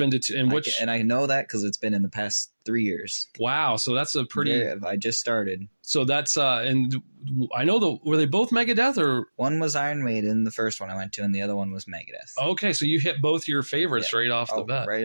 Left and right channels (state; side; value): inverted; both; correlation -1.00